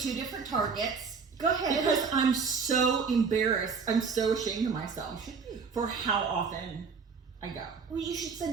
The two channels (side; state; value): left; quieter; 5.3 dB